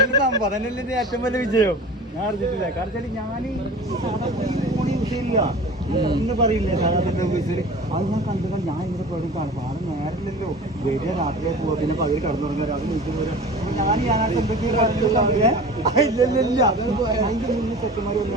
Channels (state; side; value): normal; both; correlation 0.38